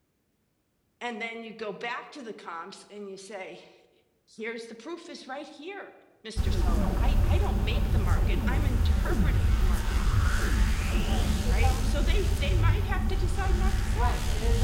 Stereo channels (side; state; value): both; identical; correlation 1.00